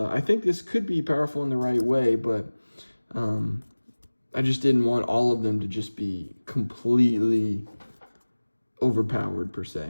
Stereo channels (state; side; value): inverted; both; correlation -1.00